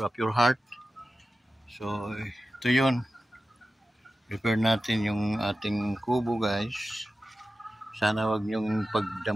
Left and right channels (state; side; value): normal; both; correlation 0.94